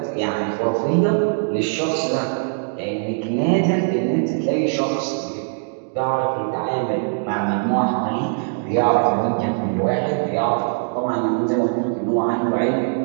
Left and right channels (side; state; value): left; silent; 62 dB below the other